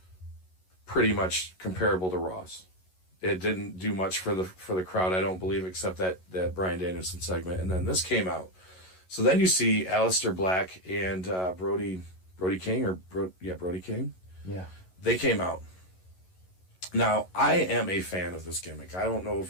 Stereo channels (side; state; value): right; late; 11 ms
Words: pretty much comparable to Raw's. It didn't do much for the crowd, I don't believe, except that Bryan Danielson segment. And then this came out. So then you see Aleister Black and Brody King, Brody King. Yeah. They came out. Now, I am a fan of this gimmick. I don't know if